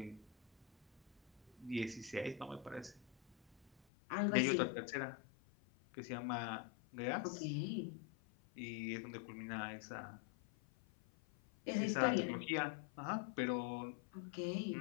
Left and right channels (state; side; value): drops out; right; at 3.8 s